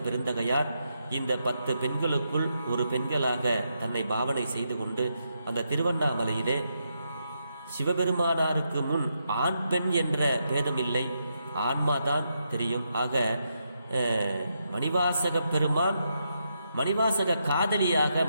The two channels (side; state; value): both; inverted; correlation -0.82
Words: பெருந்தகையார் இந்த 10 பெண்களுக்குள் ஒரு பெண்களாக தன்னை பாவனை செய்து கொண்டு அந்த திருவண்ணாமலையிலே சிவபெருமானாருக்கு முன் ஆண் பெண் என்ற பேதமில்லை, ஆன்மாதான் தெரியும். ஆக மணிவாசக பெருமான் மணிவாசக காதலியாக